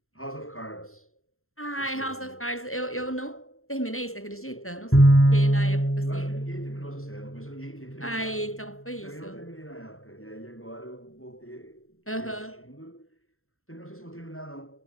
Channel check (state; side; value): late; right; 0.62 ms